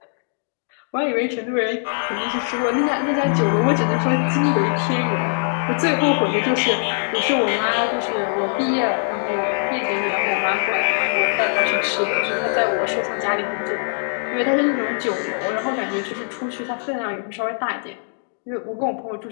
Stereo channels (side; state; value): right; silent; digital silence